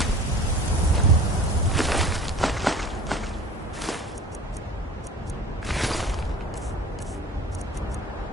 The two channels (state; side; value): normal; both; correlation 0.42